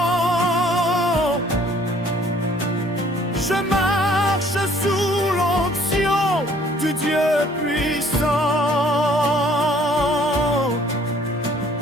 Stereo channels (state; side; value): normal; both; correlation 0.59